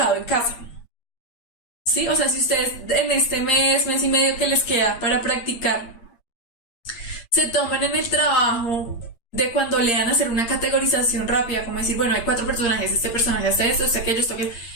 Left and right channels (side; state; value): right; late; 8.6 ms